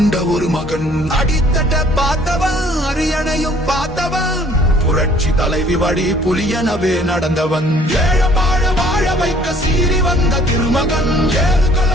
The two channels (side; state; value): both; normal; correlation 0.57